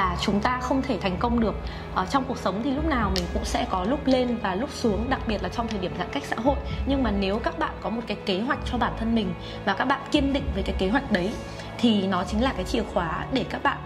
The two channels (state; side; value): identical; both; correlation 1.00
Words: chúng ta không thể thành công được. Trong cuộc sống thì lúc nào mình cũng sẽ có lúc lên và lúc xuống, đặc biệt là trong thời điểm giãn cách xã hội. Nhưng mà nếu các bạn có một cái kế hoạch cho bản thân mình và các bạn kiên định với cái kế hoạch đấy, thì nó chính là cái chìa khóa để các bạn